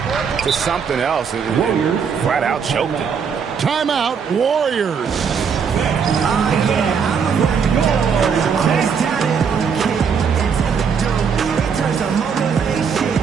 to something else, and flat out choked it. Timeout, Warriors.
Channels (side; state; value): left; quieter; 6.5 dB